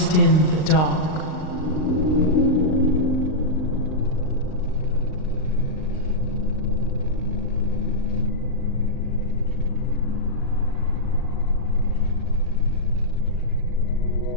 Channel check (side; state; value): right; late; 39 ms